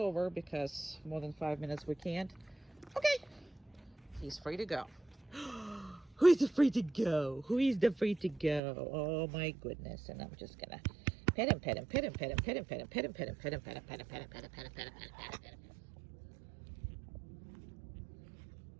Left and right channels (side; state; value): left; drops out; at 8.6 s